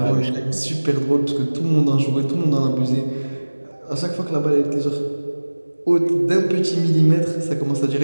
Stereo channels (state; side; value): inverted; both; correlation -1.00